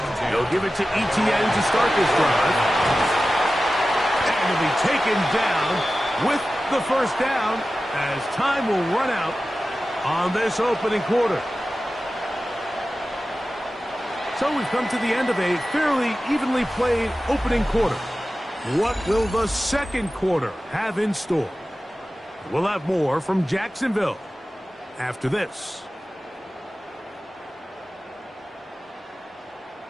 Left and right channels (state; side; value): normal; both; correlation 0.95